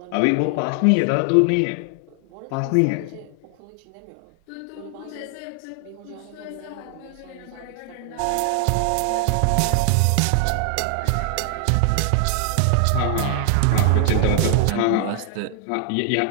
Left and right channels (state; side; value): different; both; correlation 0.00